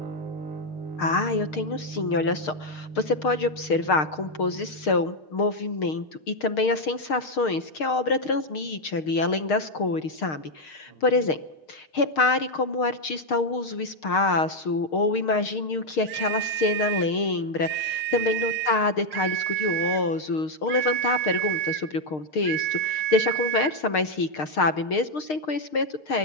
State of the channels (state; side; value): late; right; 6.5 ms